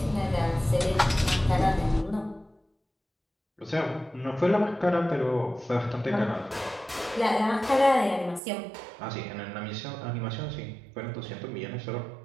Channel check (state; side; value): drops out; left; at 8.4 s